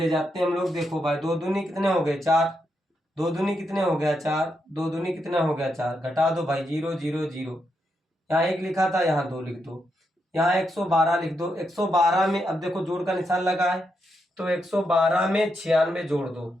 जाते हैं हम लोग। देखो भाई 2 दूनी कितने हो गए? 4। 2 दूनी कितने हो गया? 4। 2 दूनी कितना हो गया? 4। घटा दो भाई, 0 0 0। यहाँ 1 लिखा था, यहाँ 2 लिख दो। यहाँ 112 लिख दो। 112 में अब देखो जोड़ का निशान लगा है, तो 112 में 96 जोड़ दो।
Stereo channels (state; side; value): normal; both; correlation 0.82